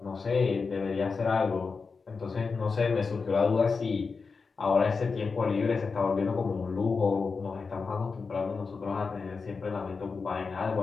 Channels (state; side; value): quieter; right; 4.8 dB